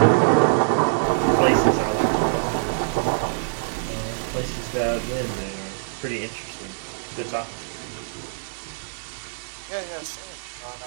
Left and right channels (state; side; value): silent; left; digital silence